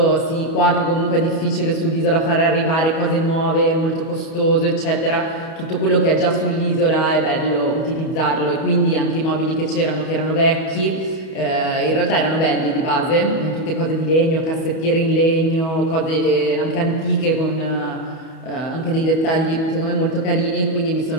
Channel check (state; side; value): late; right; 31 ms